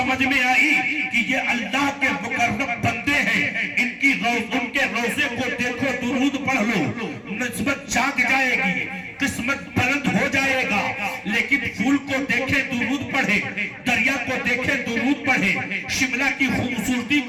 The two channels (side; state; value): both; identical; correlation 1.00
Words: میں آئی کہ یہ اللہ کے مقرب بندے ہیں، ان کے روزے کو دیکھو درود پڑھ لو، نسبت جاگ جائے گی، قسمت بلند ہو جائے گا۔ لیکن پھول کو دیکھے درود پڑھے، دریا کو دیکھے درود پڑھے، شملہ کی خوبصورتی